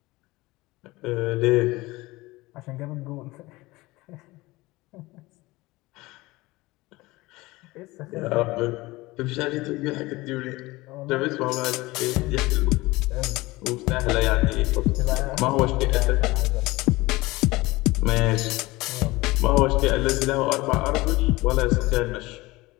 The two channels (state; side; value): quieter; right; 20.8 dB